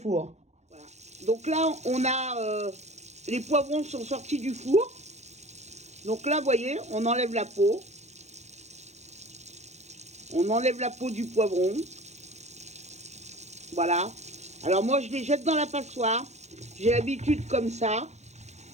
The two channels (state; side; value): late; left; 0.32 ms